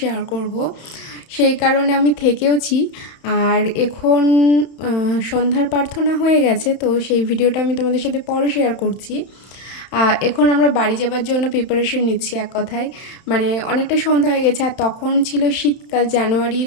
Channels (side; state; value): right; late; 31 ms